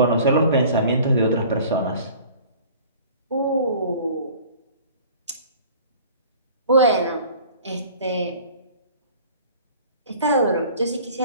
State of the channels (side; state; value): both; inverted; correlation -0.47